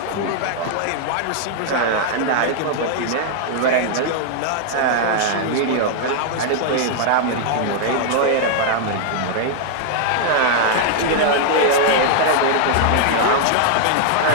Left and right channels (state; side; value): different; both; correlation -0.01